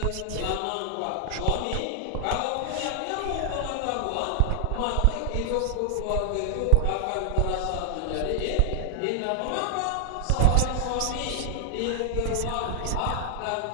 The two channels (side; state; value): both; different; correlation 0.00